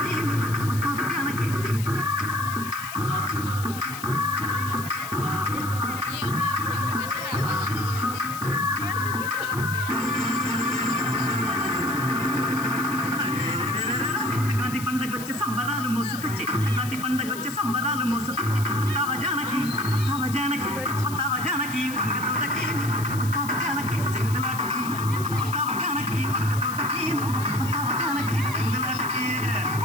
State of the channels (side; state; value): left; noise; hiss, 12 dB below the sound